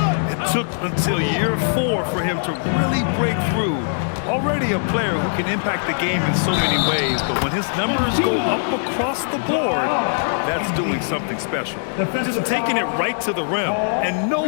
It took until year 4 for him to really break through. Already a player who can impact the game in so many ways, but when his numbers go up across the board, that's doing something special. Just taking it right to the rim, and no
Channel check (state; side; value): silent; right; 65 dB below the other